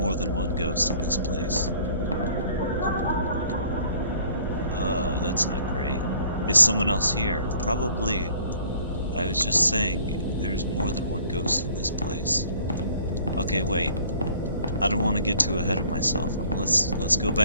than one ghost in this place. That's not great. Is someone else here? Probably. I was just saying, there's more than one ghost in this place. Okay, wait. I don't want to get too ahead of myself. Let's go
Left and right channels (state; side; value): inverted; both; correlation -0.55